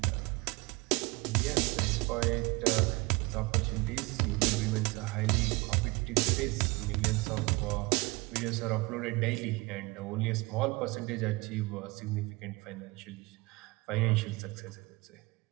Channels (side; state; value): left; quieter; 24.6 dB